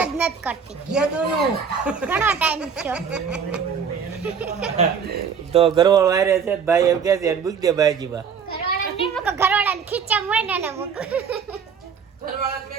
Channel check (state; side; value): quieter; left; 6.6 dB